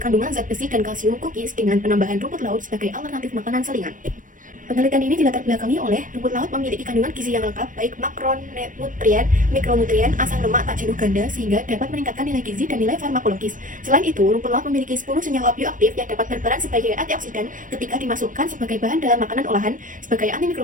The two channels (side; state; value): left; late; 0.38 ms